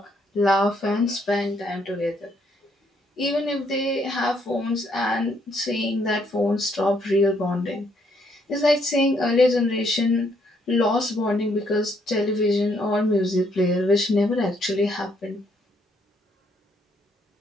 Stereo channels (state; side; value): normal; both; correlation 0.71